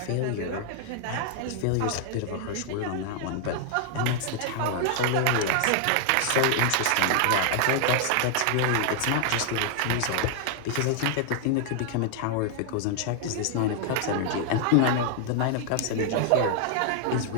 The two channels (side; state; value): both; different; correlation 0.00